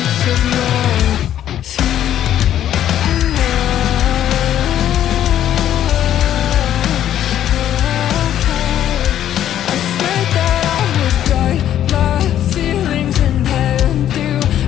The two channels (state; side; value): quieter; right; 11.2 dB